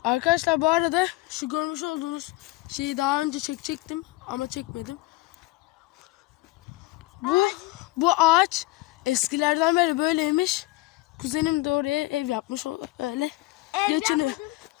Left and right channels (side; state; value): right; quieter; 19.3 dB